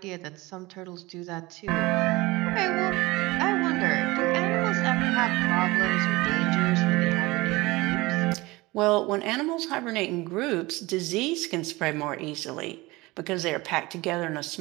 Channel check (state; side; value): quieter; left; 21.5 dB